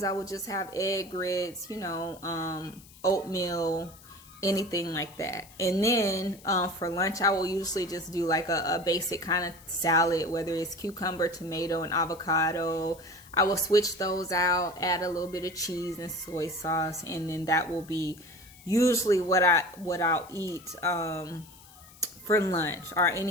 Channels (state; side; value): noise; left; hiss, 22 dB below the sound